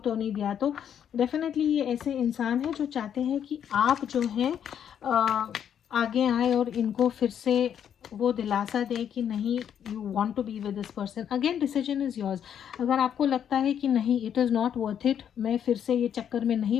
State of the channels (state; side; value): quieter; right; 9.0 dB